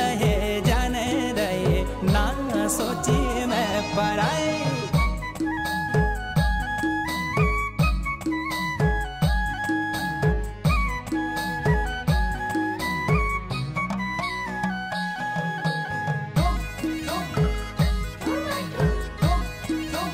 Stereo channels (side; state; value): both; identical; correlation 1.00